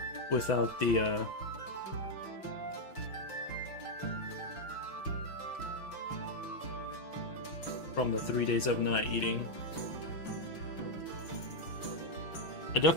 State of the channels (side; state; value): right; late; 6.1 ms